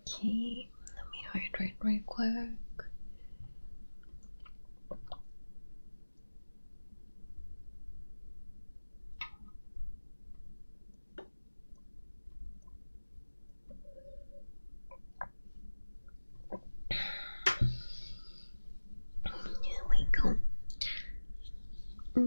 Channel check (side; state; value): both; inverted; correlation -1.00